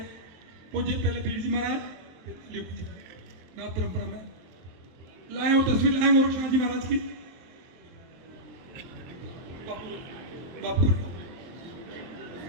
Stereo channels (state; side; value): late; left; 23 ms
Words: पूज्य पहले पीर जी महाराज नाथ परंपरा में लाए और तस्वीर लाए गोरक्षनाथ जी महाराज की। बापू